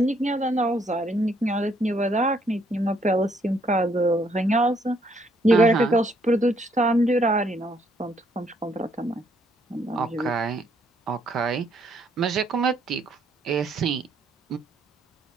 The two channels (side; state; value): both; normal; correlation 0.69